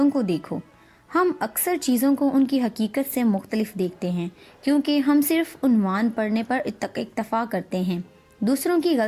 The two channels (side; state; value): both; identical; correlation 1.00